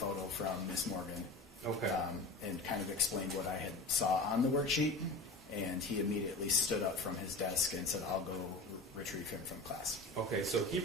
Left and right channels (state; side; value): quieter; right; 3.1 dB